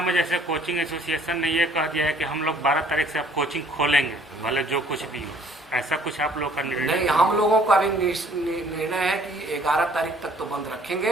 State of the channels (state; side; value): normal; both; correlation 0.58